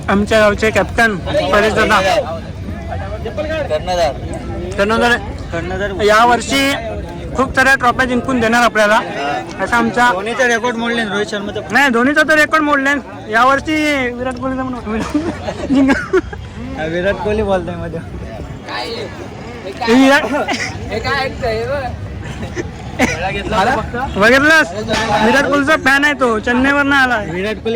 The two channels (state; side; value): identical; both; correlation 1.00